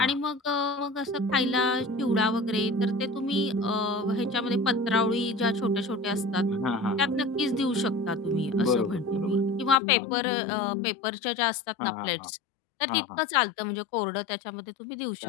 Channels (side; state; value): right; drops out; at 9.8 s